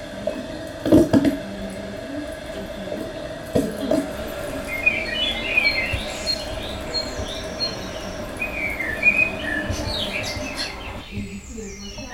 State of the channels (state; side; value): identical; both; correlation 1.00